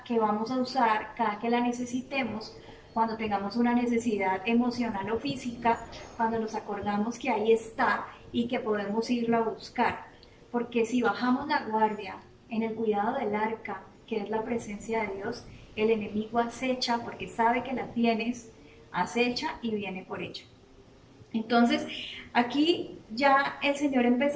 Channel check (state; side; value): identical; both; correlation 1.00